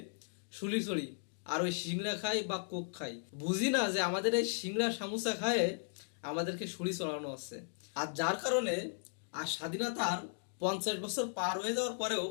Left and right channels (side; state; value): right; silent; digital silence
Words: শুলি চড়ি আর ওই সিংড়া খাই বা কোক খাই। বুঝি না যে আমাদের এই সিংড়া সামোসা খায় আমাদেরকে শুলি চড়ানো হচ্ছে। আর যার কারণে আর স্বাধীনতার 50 বছর পার হয়ে যাওয়ার পরেও